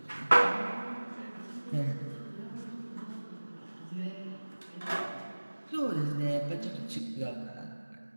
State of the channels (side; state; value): both; inverted; correlation -1.00